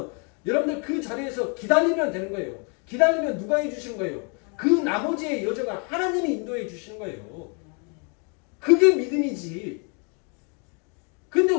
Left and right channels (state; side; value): quieter; right; 36.7 dB